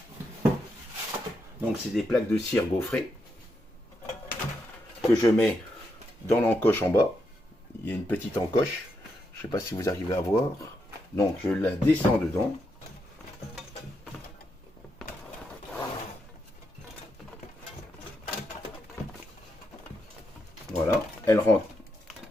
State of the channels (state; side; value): normal; both; correlation 0.82